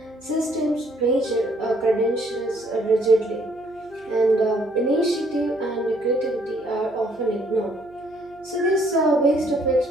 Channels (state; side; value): noise; right; hum, 27 dB below the sound